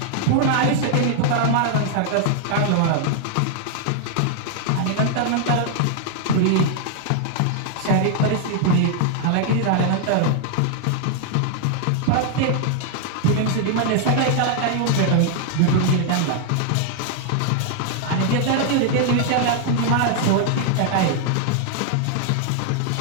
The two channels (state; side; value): different; both; correlation 0.00